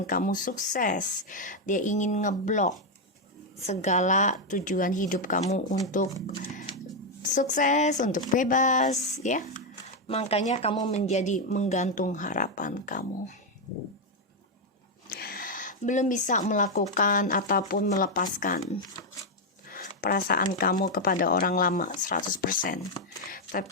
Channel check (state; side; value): normal; both; correlation 0.03